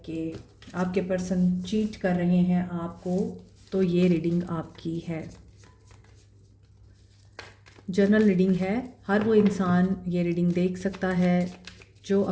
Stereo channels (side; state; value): both; identical; correlation 1.00